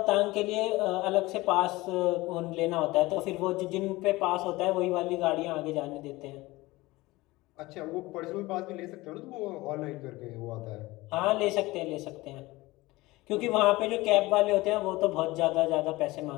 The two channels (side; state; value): right; quieter; 20.3 dB